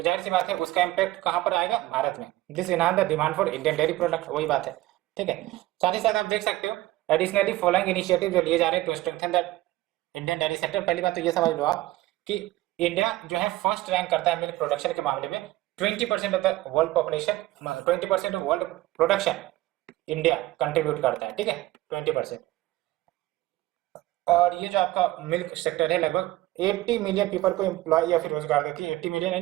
जाहिर सी बात है उसका इम्पैक्ट कहाँ पर आएगा, भारत में। This enhance the demand for Indian dairy product, वही बात है, ठीक है। साथ ही साथ आप देख सकते हो एडिशनली फॉलोइंग इनिशिएटिव जो लिए जा रहे हैं to strengthen the Indian dairy sector. पहली बात तो ये समझ लो आप कि इंडिया जो है फर्स्ट रैंक करता है मिल्क प्रोडक्शन के मामले में। 20% of the world population, 20% of world production India contribute करता है, ठीक है, 20%। और ये जो आपका मिल्क सेक्टर है लगभग 80 मिलियन पीपल को एम्प्लॉय या फिर रोजगार देती है, 80 मिलियन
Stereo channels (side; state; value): left; quieter; 17.3 dB